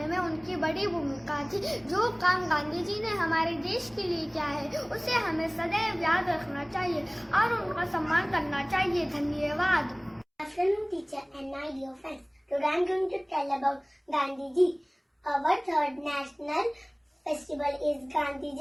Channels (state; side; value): identical; both; correlation 1.00